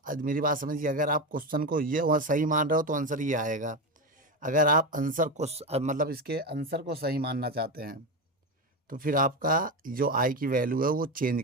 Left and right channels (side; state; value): both; normal; correlation 0.15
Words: मेरी बात समझिए, अगर आप क्वेश्चन को ये वहाँ सही मान रहे हो तो आंसर ये आएगा। अगर आप आंसर को मतलब इसके आंसर को सही मानना चाहते हैं तो फिर आपका जो आई की वैल्यू है वो चेंज